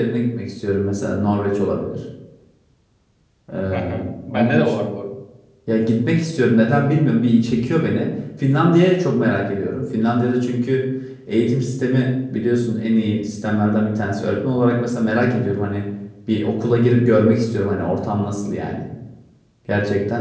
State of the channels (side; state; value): both; identical; correlation 1.00